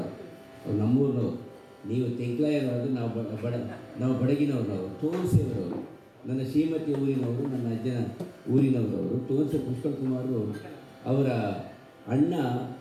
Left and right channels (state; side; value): identical; both; correlation 1.00